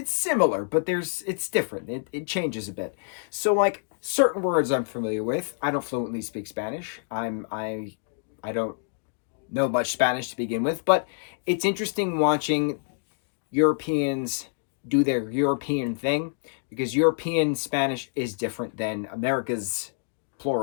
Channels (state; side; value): silent; right; digital silence